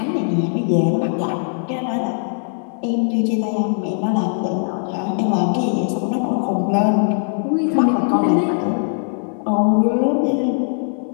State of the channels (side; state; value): right; silent; digital silence